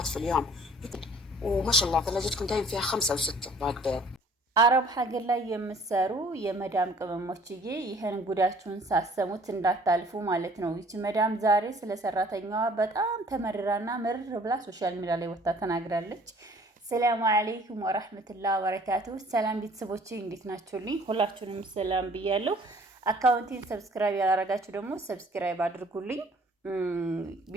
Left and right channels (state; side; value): normal; both; correlation 0.54